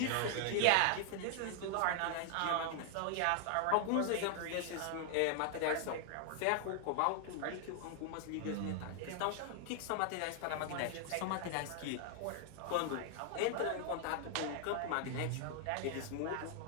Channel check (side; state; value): both; different; correlation 0.00